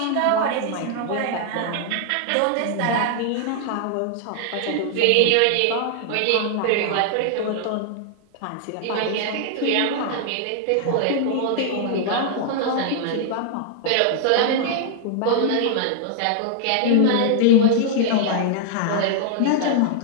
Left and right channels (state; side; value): different; both; correlation 0.00